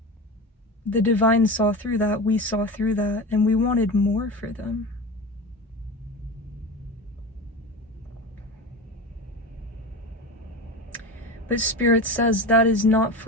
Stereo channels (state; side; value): normal; both; correlation 0.28